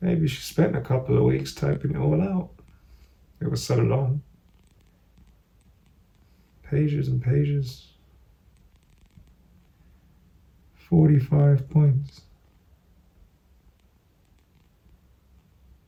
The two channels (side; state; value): both; identical; correlation 1.00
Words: she spent a couple of weeks typing it all out. It was so long. Pages and pages. 45 points.